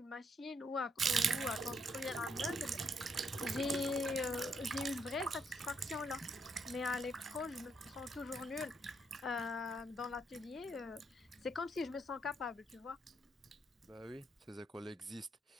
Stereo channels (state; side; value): normal; both; correlation 0.75